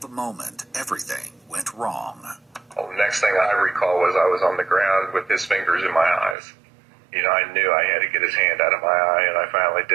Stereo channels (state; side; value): drops out; left; at 6.4 s